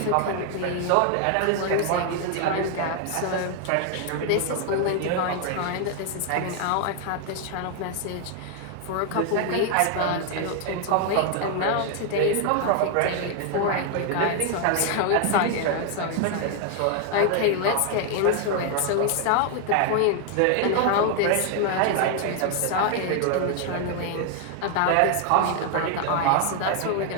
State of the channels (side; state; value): both; different; correlation 0.00